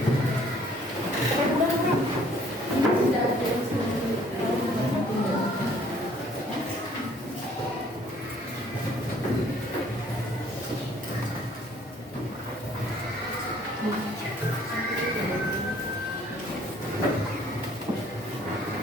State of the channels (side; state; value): both; normal; correlation 0.59